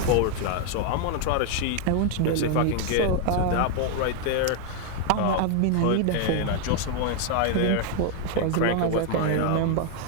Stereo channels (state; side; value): different; both; correlation 0.01